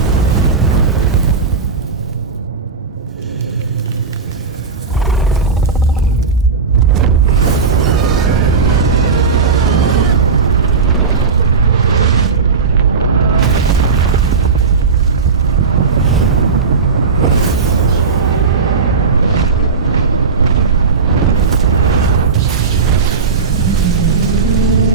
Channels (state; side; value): quieter; left; 5.0 dB